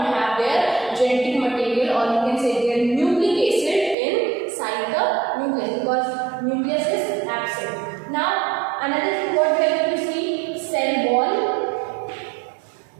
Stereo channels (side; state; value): left; drops out; at 4.0 s